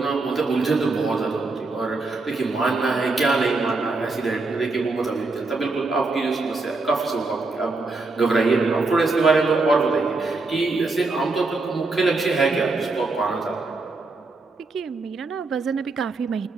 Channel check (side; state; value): left; quieter; 3.6 dB